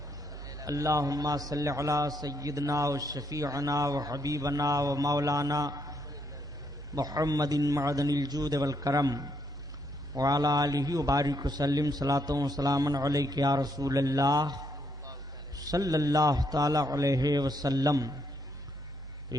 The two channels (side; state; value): both; normal; correlation 0.74